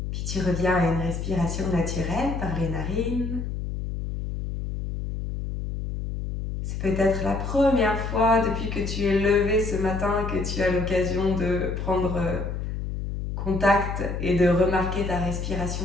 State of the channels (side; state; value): left; noise; hum, 4 dB below the sound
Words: Puis tu reviens à une respiration naturelle par les narines. C'est peut-être la première fois depuis que tu es levé ce matin que tu as l'occasion de prendre contact et de remarquer ta